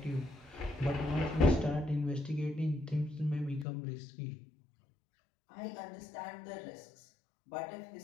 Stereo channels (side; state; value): right; drops out; at 3.7 s